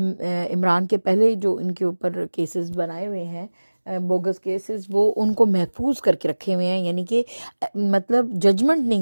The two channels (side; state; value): both; inverted; correlation -1.00